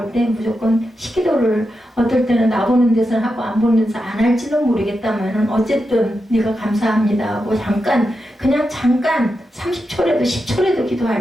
때 무조건 식기도를 어떨 때는 나 보는 데서는 하고 안 보는 데서 안 할지는 모르겠다만은 어쨌든 네가 감사합니다 하고 잠깐 그냥 잠깐 30초라도 10초라도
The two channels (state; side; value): normal; both; correlation 0.88